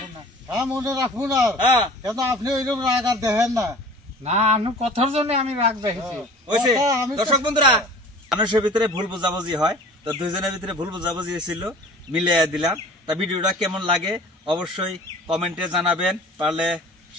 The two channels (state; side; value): normal; both; correlation 0.44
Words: না। হ্যাঁ মনে রাখবো না, কেন আপনি ওইরকম রাগ আর দেখেন না। না আমি কথার জন্য আমি রাগ দেখেছি। দর্শক বন্ধুরা মানুষের ভিতরে ভুল বুঝাবুঝি হয়, তো দুইজনের ভিতরে ভুল বুঝাবুঝি হয়েছিল, মিলিয়ে দিলাম। তা ভিডিওটা কেমন লাগে অবশ্যই কমেন্টে জানাবেন, পারলে